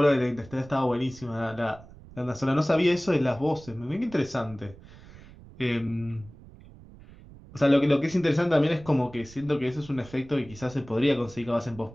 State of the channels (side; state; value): right; noise; rumble, 20 dB below the sound